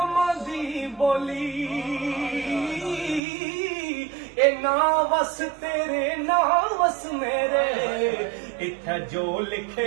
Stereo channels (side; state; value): left; drops out; at 3.2 s